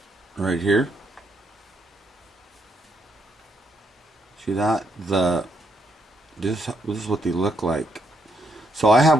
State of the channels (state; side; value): normal; both; correlation 0.75